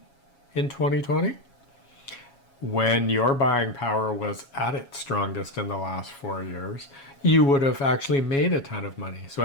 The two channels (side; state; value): right; late; 7.2 ms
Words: in 2020, when your buying power was at its strongest in the last 4 years, you would have actually made a ton of money. So,